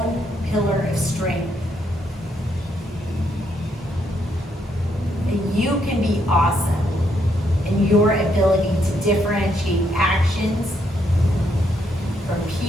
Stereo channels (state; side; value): normal; both; correlation 0.75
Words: pillar of strength. That you can be awesome in your ability to differentiate actions from